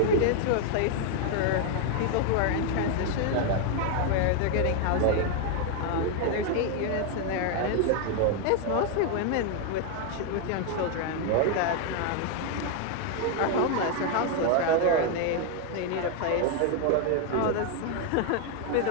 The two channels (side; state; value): both; different; correlation 0.00